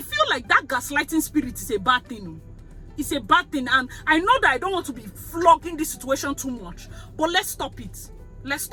feel like that gaslighting spirit is a bad thing. It's a bad thing. And I know that I don't want to be flogging this situation too much. But let's stop it. Let's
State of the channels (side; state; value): both; identical; correlation 1.00